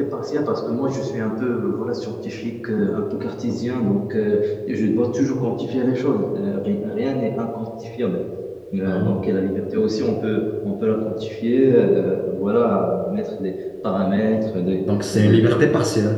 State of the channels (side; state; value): both; identical; correlation 1.00